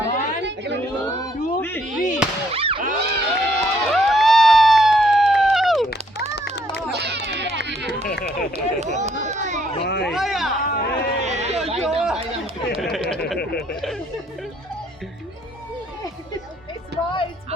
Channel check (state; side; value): normal; both; correlation 0.68